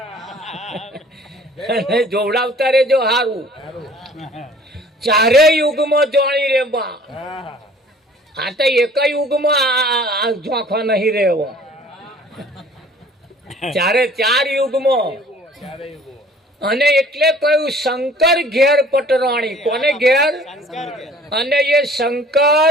જોવડાવતા રેજો હારું. ચારે યુગમાં જોણી રે બા. આ તો એક યુગમાં જોખવા નહીં રહેવો. ચારે 4 યુગમાં. અને એટલે કહ્યું શંકર ઘેર પટરાણી. કોને ઘેર? અને એ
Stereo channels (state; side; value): normal; both; correlation 0.51